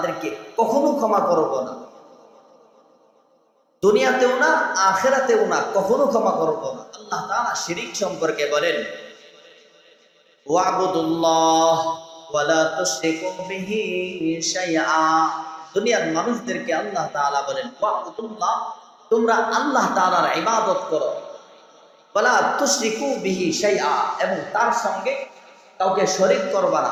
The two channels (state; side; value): identical; both; correlation 1.00